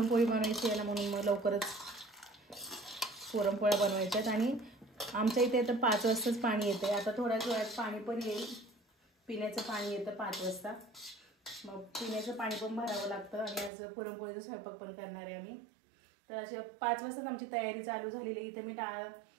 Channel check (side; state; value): left; drops out; at 13.7 s